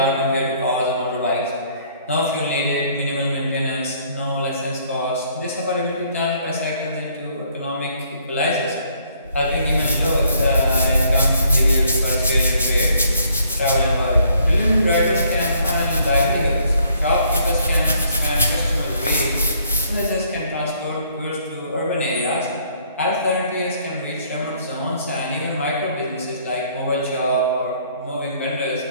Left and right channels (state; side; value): inverted; both; correlation -0.64